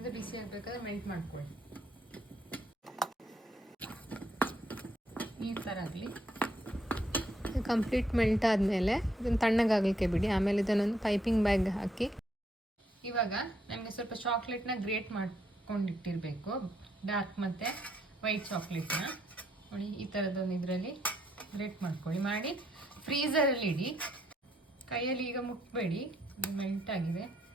ಬಿಸಿ ಆಗಬೇಕಾದ್ರೆ ಮೆಲ್ಟ್ ಮಾಡ್ಕೊಳ್ಳಿ. ಈ ಥರ ಆಗಲಿ. ಕಂಪ್ಲೀಟ್ ಮೆಲ್ಟ್ ಆದಮೇಲೆ ಇದನ್ನು ತಣ್ಣಗಾಗಲಿಕ್ಕೆ ಬಿಡಿ. ಆಮೇಲೆ ಇದನ್ನೊಂದು ಪೈಪಿಂಗ್ ಬ್ಯಾಗ್ ಹಾಕಿ. ಇವಾಗ ನಮಗೆ ಸ್ವಲ್ಪ ಚಾಕ್ಲೇಟ್ನ ಗ್ರೇಟ್ ಮಾಡ್ಕೊಂಡಿಟ್ಟಿರಬೇಕು, ಡಾರ್ಕ್ ಮತ್ತು ವೈಟ್ ಚಾಕ್ಲೇಟ್ನ ನೋಡಿ. ಈ ಥರದೊಂದು ಇದರಲ್ಲಿ ಗ್ರೇಟ್ ಮಾಡ್ಕೊಳ್ಳಿ. ಮಾಡಿ ಫ್ರೀಸರಲ್ಲಿ ಇಡಿ. ಕೈಯಲ್ಲಿ ಈಗ ಮುಟ್ಬೇಡಿ, ಇದು ಮೆಲ್ಟ್ ಆಗಿದೆ.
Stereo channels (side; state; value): both; normal; correlation 0.73